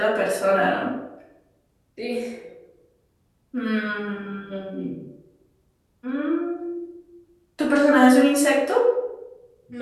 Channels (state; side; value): identical; both; correlation 1.00